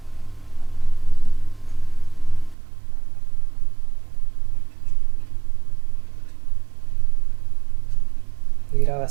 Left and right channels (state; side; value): drops out; left; at 2.6 s